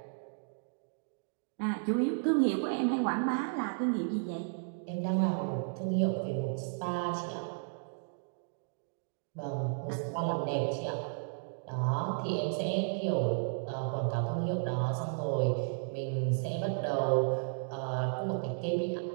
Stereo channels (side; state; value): left; silent; digital silence